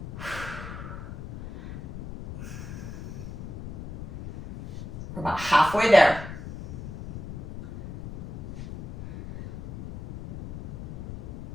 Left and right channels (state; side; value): noise; left; rumble, 9 dB below the sound